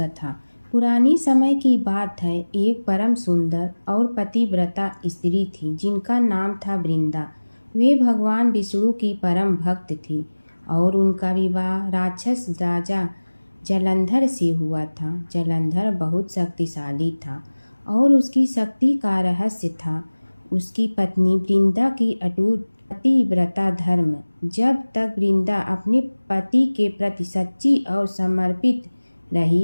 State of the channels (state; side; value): inverted; both; correlation -1.00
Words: पुरानी समय की बात है। एक परम सुंदर और पतिव्रता स्त्री थी जिनका नाम था वृंदा। वे भगवान विष्णु की परम भक्त थी और उनका विवाह राक्षस राजा जलंधर से हुआ था। जलंधर बहुत शक्तिशाली था और उसकी शक्ति का रहस्य था उसकी पत्नी वृंदा की अटूट पतिव्रता धर्म। जब तक वृंदा अपने पति के प्रति सच्ची और समर्पित